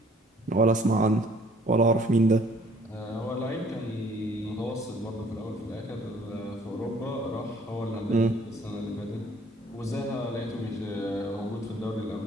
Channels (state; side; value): normal; both; correlation 0.58